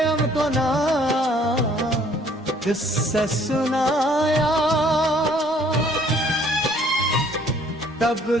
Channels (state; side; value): normal; both; correlation 0.59